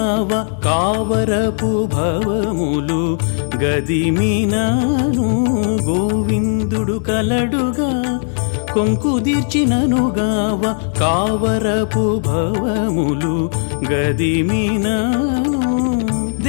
కావరపు భవములు గదిమినాను గోవిందుడు కలడుగా కొంకుదీర్చిననుగావ కావరపు భవములు గదిమినాను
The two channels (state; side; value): silent; right; digital silence